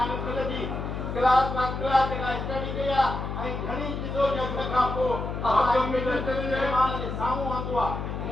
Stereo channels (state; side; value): noise; left; hum, 5 dB below the sound